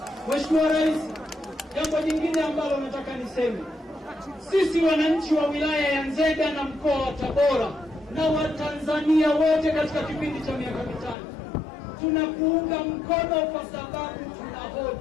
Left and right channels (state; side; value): drops out; right; at 11.2 s